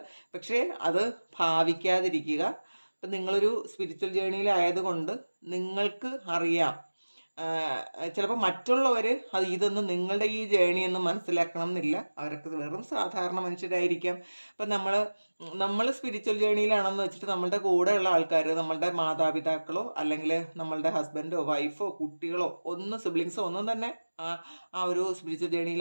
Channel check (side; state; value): both; inverted; correlation -1.00